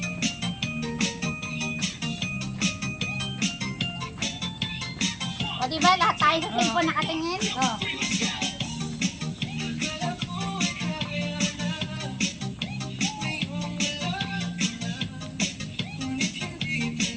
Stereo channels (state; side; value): identical; both; correlation 1.00